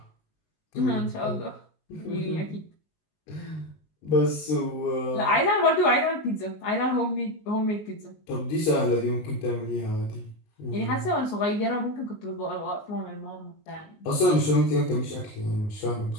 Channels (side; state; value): right; late; 19 ms